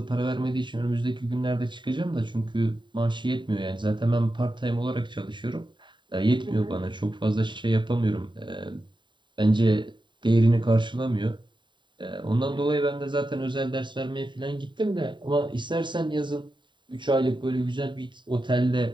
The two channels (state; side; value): late; left; 0.23 ms